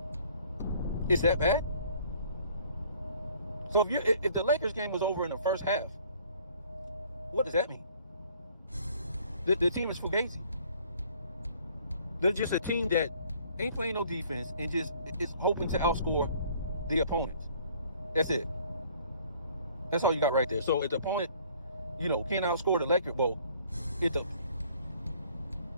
Is that bad? So if the Lakers game was over in the first half, what does that mean? The team is fugazi. They're just a team that ain't playing no defense and just is hoping to outscore the opponent. That's it. That's all you got right there. So if the opponent, can't outscore the Lakers, well, if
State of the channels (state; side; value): inverted; both; correlation -0.57